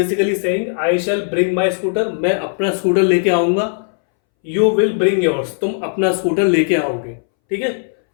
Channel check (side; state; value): right; silent; 66 dB below the other